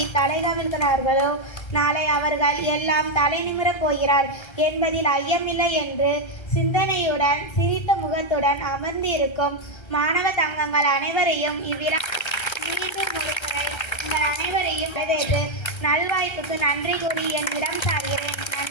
தலைகவிழ்கிறார்களோ நாளை அவர்கள் எல்லாம் தலை நிமிரப் போகிறார் என்பதில் ஐயமில்லை என்று சிந்தனையுடன் சிரித்த முகத்துடன் அமர்ந்து இருக்கும் மாணவ தங்கங்கள் அனைவரையும் இவ்விழா மீண்டும் ஒருமுறை உங்கள் அனைவரையும் வரவேற்று நல்வாய்ப்புக்கு நன்றி கூறி என்னிடம் சார்கிறேன்.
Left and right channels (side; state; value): right; late; 1.3 ms